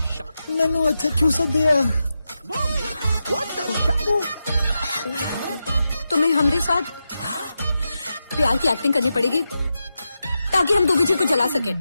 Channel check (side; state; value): both; inverted; correlation -0.89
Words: मैनू इत्थे क्यों सदिया? तुम्हें हमारे साथ प्यार की एक्टिंग करनी पड़ेगी ताकि हम दुबे जी को जला सके।